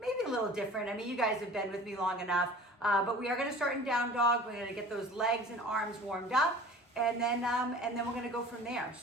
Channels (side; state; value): both; normal; correlation 0.43